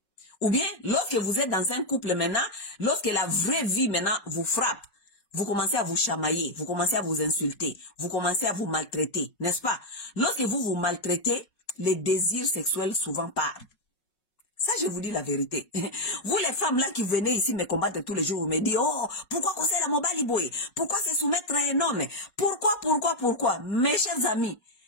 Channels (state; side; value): late; right; 5.4 ms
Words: Ou bien, lorsque vous êtes dans un couple maintenant, lorsque la vraie vie maintenant vous frappe, vous commencez à vous chamailler, vous commencez à vous insulter, vous commencez à vous maltraiter, n'est-ce pas? Lorsque vous vous maltraitez, les désirs sexuels souvent partent. Ça, je vous dis la vérité. Vous, les femmes là qui venez ici me combattre tous les jours, vous me dites, oh, pourquoi conseiller la mobile boy? Pourquoi se soumettre à un homme? Pourquoi? Mes chers amis,